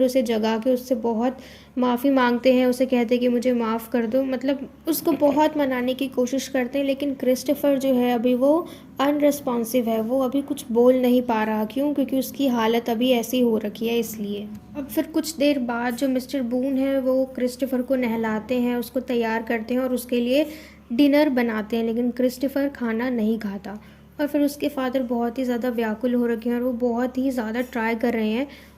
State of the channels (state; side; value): identical; both; correlation 1.00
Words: उसे जगा के उससे बहुत माफ़ी मांगते हैं, उसे कहते हैं कि मुझे माफ़ कर दो, मतलब उसको बहुत मनाने की कोशिश करते हैं। लेकिन क्रिस्टोफर जो है अभी वो अनरिस्पॉन्सिव है, वो अभी कुछ बोल नहीं पा रहा। क्यों? क्योंकि उसकी हालत अभी ऐसी हो रखी है, इसलिए। अब फिर कुछ देर बाद जो मिस्टर बून है वो क्रिस्टोफर को नहलाते हैं, उसको तैयार करते हैं और उसके लिए डिनर बनाते हैं, लेकिन क्रिस्टोफर खाना नहीं खाता। और फिर उसके फादर बहुत ही ज़्यादा व्याकुल हो रखे हैं और वो बहुत ही ज़्यादा ट्राई कर रहे हैं